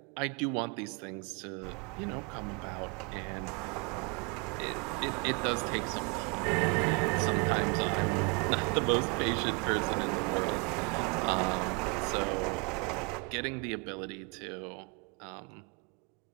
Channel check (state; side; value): quieter; left; 32.3 dB